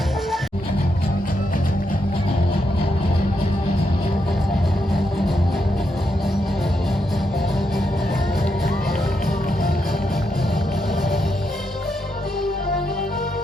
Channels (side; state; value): both; normal; correlation 0.81